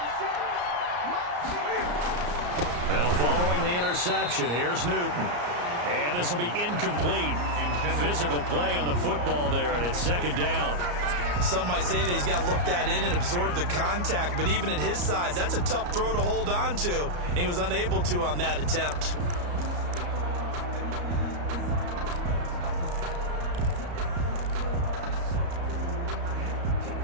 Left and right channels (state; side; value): late; left; 34 ms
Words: Now following the interception, here's Newton. And this will be incomplete. Physical play on the football there, and it's 2nd down. Some might say that he's got looked at in and absorbed the contact, but even at his size, that's a tough throw to hold on to. And he was unable to on that attempt.